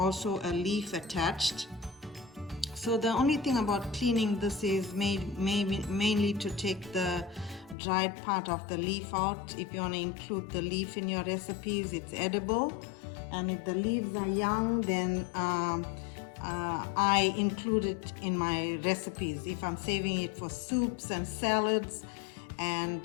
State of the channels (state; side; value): drops out; right; at 7.8 s